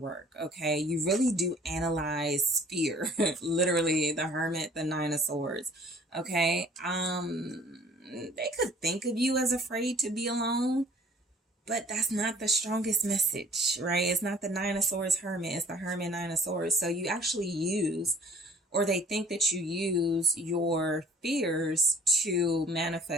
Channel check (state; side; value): normal; both; correlation 0.53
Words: Okay. You really do analyze fear. Literally, the Hermit, the Nine of Swords. Okay. They could think of you as afraid to be alone, but that's not the strongest message, right? It's not the Nine of Swords Hermit. It's the Hermit, Nine of Swords. So you actually use, or they think that you use your fears to